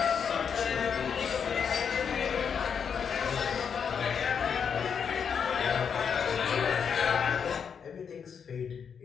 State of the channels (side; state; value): right; quieter; 6.9 dB